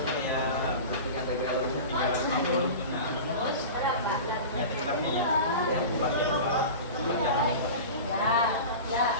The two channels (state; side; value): inverted; both; correlation -0.32